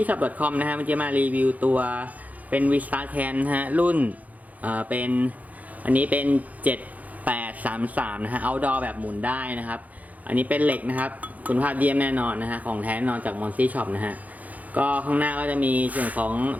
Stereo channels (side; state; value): left; late; 0.076 ms